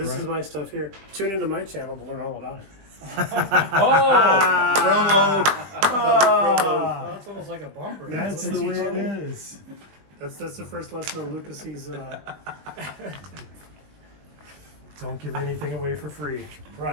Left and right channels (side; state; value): left; late; 20 ms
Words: is my stuff here. Tune into my channel to learn all about it. Ah, That's almost like a bumper. that's the way it is. That's the first lesson on Luka Cee's. Don't give anything away for free.